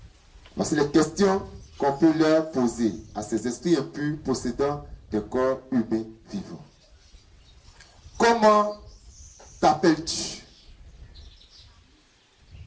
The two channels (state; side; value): identical; both; correlation 1.00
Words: Voici les questions qu'on peut leur poser à ces esprits impurs possédant des corps humains vivants. Comment t'appelles-tu?